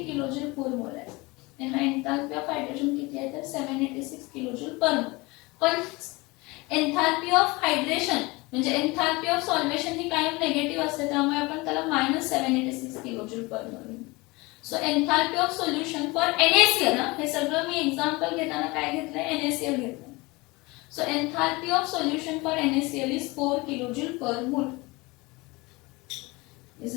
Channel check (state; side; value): quieter; right; 23.9 dB